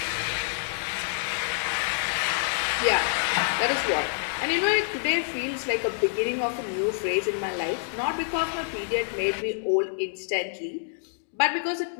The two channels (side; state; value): right; silent; digital silence